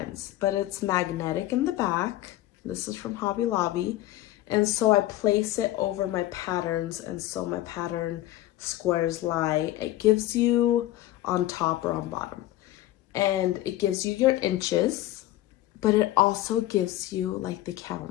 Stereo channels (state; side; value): quieter; right; 15.3 dB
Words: but it's magnetic in the back. This is from Hobby Lobby. And so I place it over my patterns, and so my pattern squares lie. It gives you on top or on bottom, and it gives you your inches, but it also gives you like the